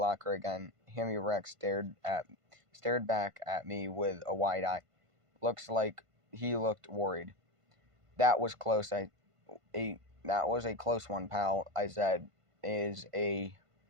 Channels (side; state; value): left; late; 1.5 ms